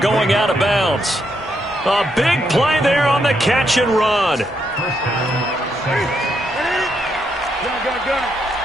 out of bounds. A big play there on the catch and run.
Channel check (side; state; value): both; normal; correlation 0.78